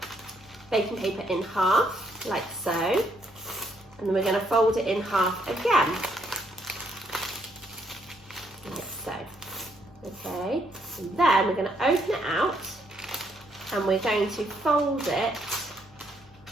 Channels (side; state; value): both; normal; correlation 0.73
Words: baking paper in half, like so. And then we're going to fold it in half again, like so. Okay, and then we're going to open it out and we're going to fold it